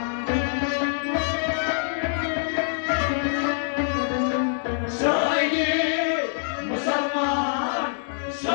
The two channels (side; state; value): right; silent; digital silence